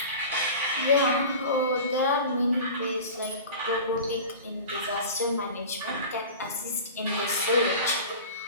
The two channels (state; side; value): inverted; both; correlation -0.35